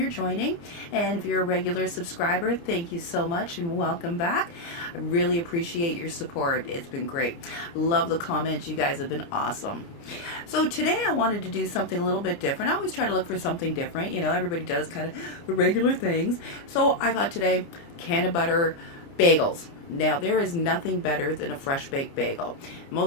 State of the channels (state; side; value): late; right; 29 ms